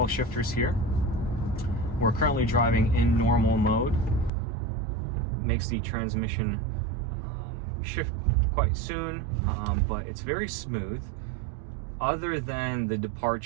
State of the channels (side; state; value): left; drops out; at 4.3 s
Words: shifters here. We're currently driving in normal mode. It makes the transmission shift quite soon, but it's very smooth. Other than the